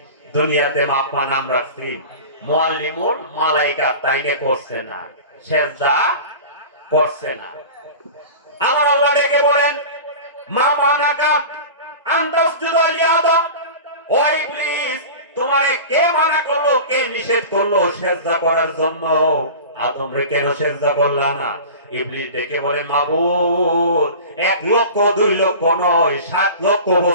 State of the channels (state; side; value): inverted; both; correlation -0.34